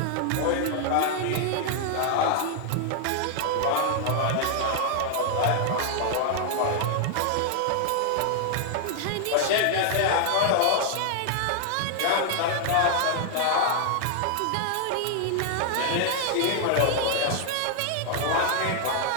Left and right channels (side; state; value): both; different; correlation 0.00